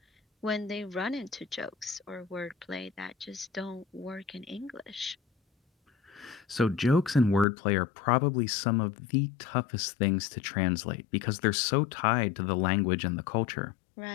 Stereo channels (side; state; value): right; drops out; at 7.5 s